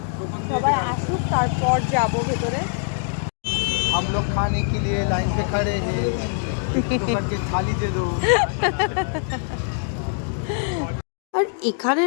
সবাই আসুক তারপর যাবো ভেতরে। हम लोग खाने के लिए लाइन पे खड़े हैं, के थाली दे दो। আর এখানে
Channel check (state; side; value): silent; right; digital silence